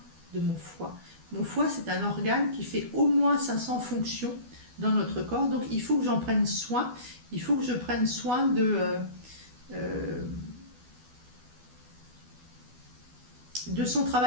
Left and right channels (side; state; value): left; late; 12 ms